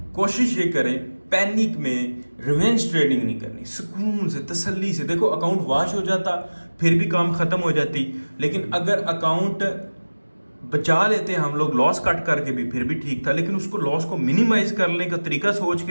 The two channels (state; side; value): inverted; both; correlation -1.00